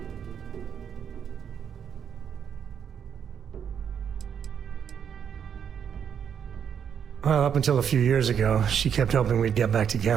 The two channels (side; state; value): left; quieter; 8.0 dB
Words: Well, up until a few years ago, she kept hoping we'd get back